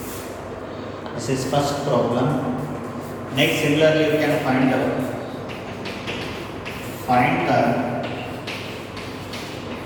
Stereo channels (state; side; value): identical; both; correlation 1.00